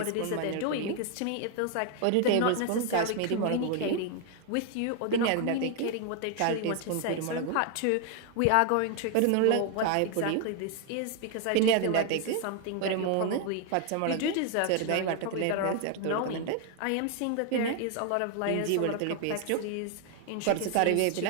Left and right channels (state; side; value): different; both; correlation 0.00